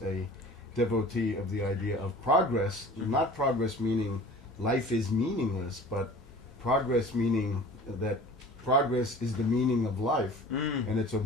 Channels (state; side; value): normal; both; correlation 0.43